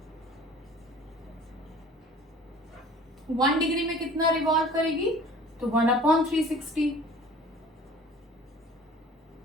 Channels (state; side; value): normal; both; correlation 0.47